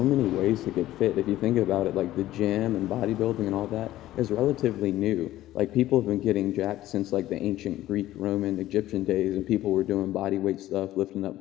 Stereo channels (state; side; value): quieter; right; 14.8 dB